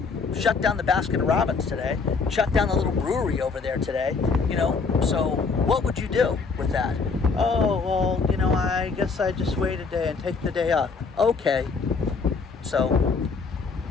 Shut down the Baskin Robbins today. Shut down the little brewery over there today. You know, so what would you do with that? Oh, well, you know, I guess I just wait a day and take the day off. Okay. So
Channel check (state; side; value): quieter; right; 4.8 dB